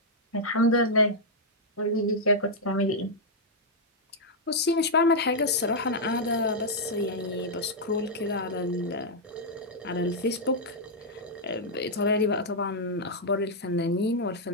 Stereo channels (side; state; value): both; normal; correlation -0.05